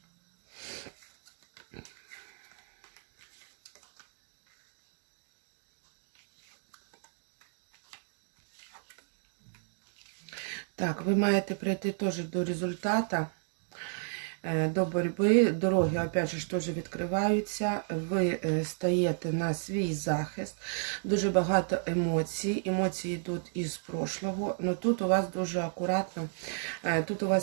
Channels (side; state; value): left; silent; digital silence